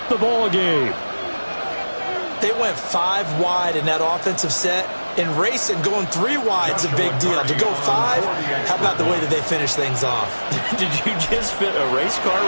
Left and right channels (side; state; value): both; inverted; correlation -1.00